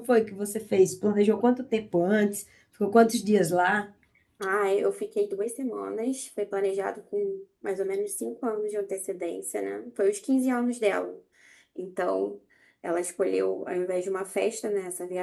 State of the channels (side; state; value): both; identical; correlation 1.00